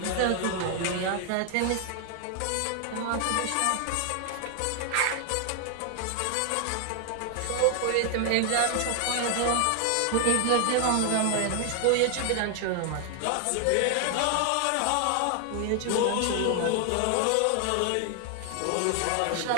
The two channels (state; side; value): different; both; correlation 0.00